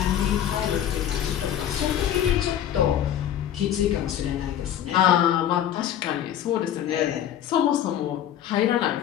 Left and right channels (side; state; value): right; quieter; 10.6 dB